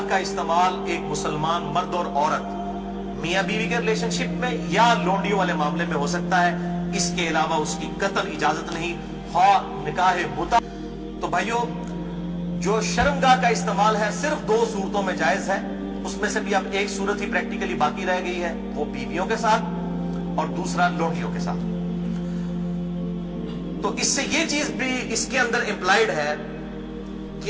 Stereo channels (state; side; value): identical; both; correlation 1.00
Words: کا استعمال ایک مسلمان مرد اور عورت میاں بیوی کے ریلیشن شپ میں یا لونڈیوں والے معاملے میں ہو سکتا ہے، اس کے علاوہ اس کی قطعاً اجازت نہیں، خواہ نکاح متع۔ تو بھائیو، جو شرمگاہ کا استعمال ہے صرف 2 صورتوں میں جائز ہے، اس میں سے بھی اب ایک صورت ہی پریکٹیکلی باقی رہ گئی ہے، وہ بیویوں کے ساتھ اور دوسرا لونڈیوں کے ساتھ۔ تو اس سے یہ چیز بھی اس کے اندر امپلائیڈ ہے